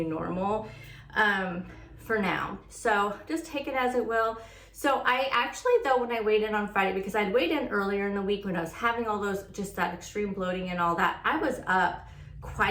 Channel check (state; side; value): identical; both; correlation 1.00